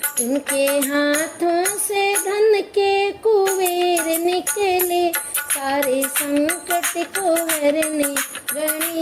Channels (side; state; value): both; identical; correlation 1.00